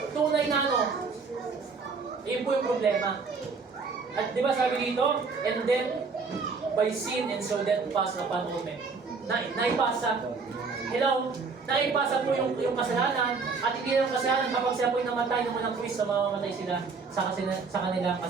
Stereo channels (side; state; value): left; quieter; 4.8 dB